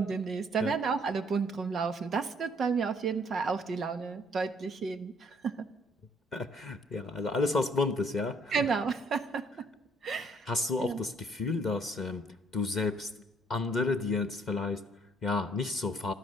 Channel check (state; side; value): normal; both; correlation 0.64